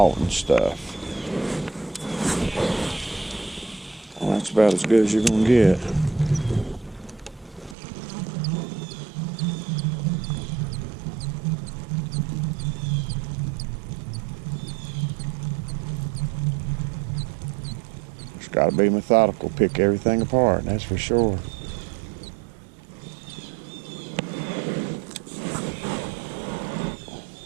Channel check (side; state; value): left; drops out; at 7.8 s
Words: stuff. Well, that's about as good as you're going to get. It's got to be methodical, pick everything apart, that's for sure.